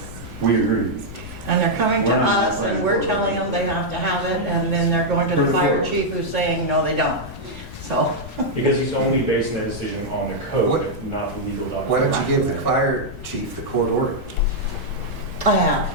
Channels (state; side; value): noise; left; rumble, 13 dB below the sound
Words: we agree. And they're coming to We're not us and we're applying for it. telling them they have to have it, and then they're going to the fire chief who's saying, no, they don't. So, Because he's only basing that decision on the code, What- not the legal Why document. don't you give the fire chief the court order? I have.